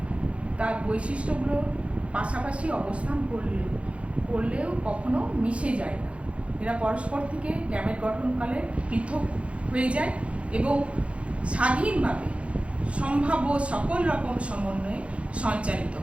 তার বৈশিষ্ট্যগুলো পাশাপাশি অবস্থান করলেও কখনো মিশে যায় না। এরা পরস্পর থেকে গ্যামেট গঠনকালে পৃথক হয়ে যায় এবং স্বাধীনভাবে সম্ভাব্য সকল রকম সমন্বয়ে সঞ্চারিত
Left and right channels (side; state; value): left; late; 0.061 ms